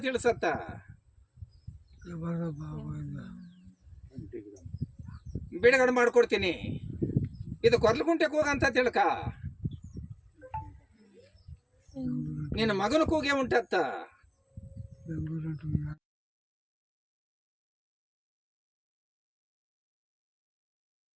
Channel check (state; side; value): identical; both; correlation 1.00